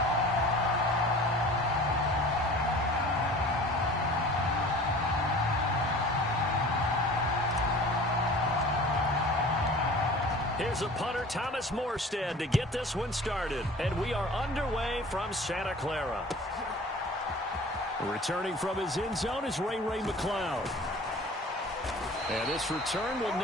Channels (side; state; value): both; normal; correlation 0.43